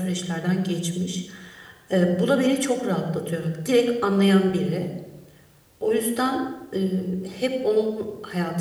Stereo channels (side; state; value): both; identical; correlation 1.00